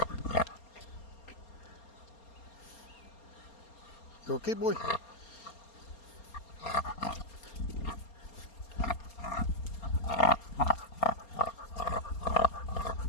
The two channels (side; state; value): right; late; 4.3 ms